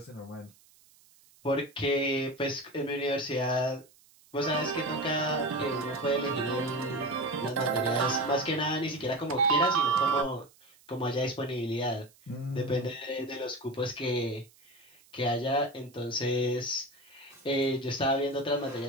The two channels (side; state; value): right; noise; hiss, 28 dB below the sound